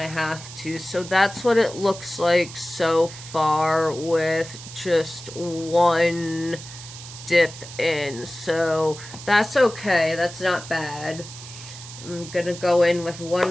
have to. So that's what it looks like so far with just one dip in. So that's okay. That's not bad. I'm gonna go in with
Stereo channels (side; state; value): right; noise; hiss, 14 dB below the sound